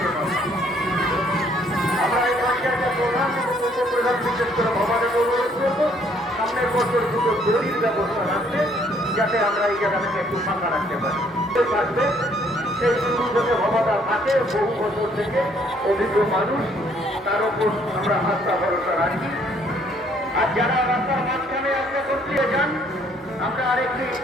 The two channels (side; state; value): both; normal; correlation 0.64